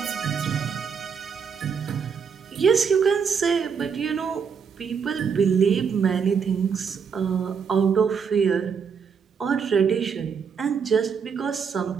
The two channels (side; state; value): left; quieter; 6.4 dB